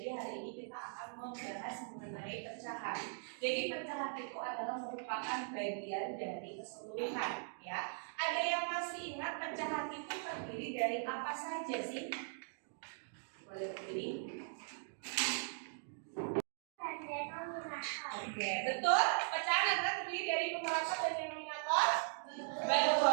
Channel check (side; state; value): left; silent; digital silence